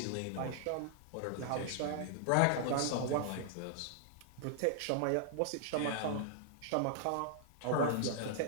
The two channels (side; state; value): both; different; correlation -0.01